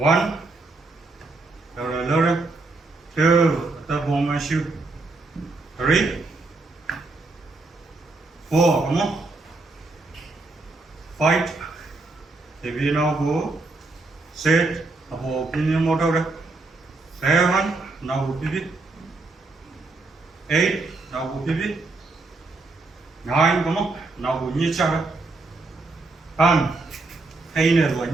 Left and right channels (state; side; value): quieter; left; 3.3 dB